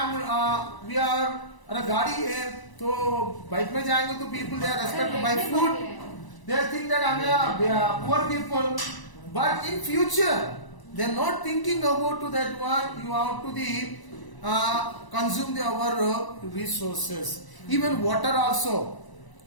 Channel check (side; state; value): right; late; 1.0 ms